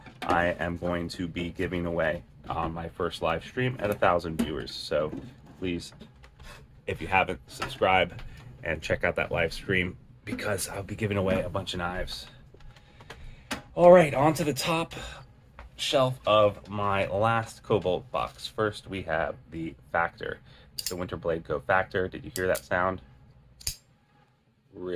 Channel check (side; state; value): both; identical; correlation 1.00